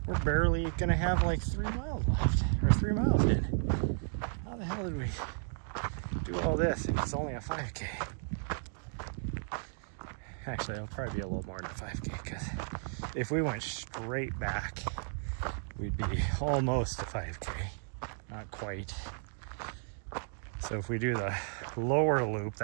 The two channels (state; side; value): silent; left; digital silence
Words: we're barely gonna have like 3 miles left, or 3 miles in. How the hell did we do all this if it's only a 5K? Actually, it'll probably be a little more than a 5K, because if we went straight back, we'd be almost a 5K, not quite. So if we do the lower loop,